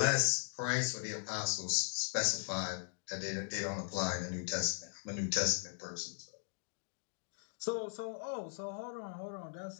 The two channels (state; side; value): silent; right; digital silence